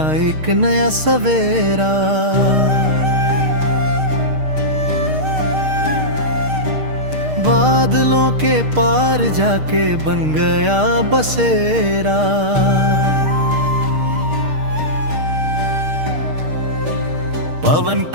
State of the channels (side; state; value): left; late; 6.5 ms